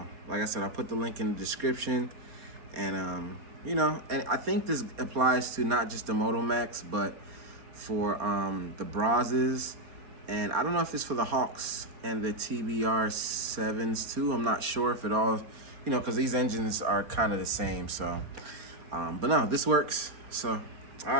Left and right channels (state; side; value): late; left; 4.4 ms